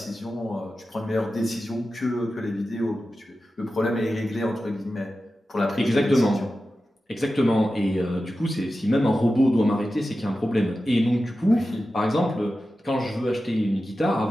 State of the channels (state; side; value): normal; both; correlation 0.93